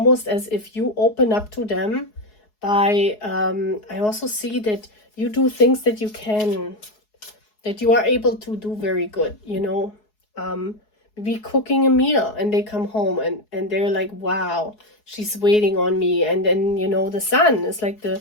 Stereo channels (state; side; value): late; right; 4.7 ms